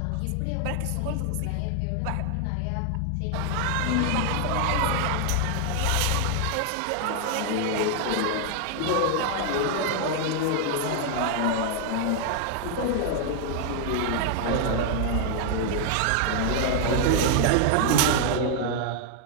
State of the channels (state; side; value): different; both; correlation 0.00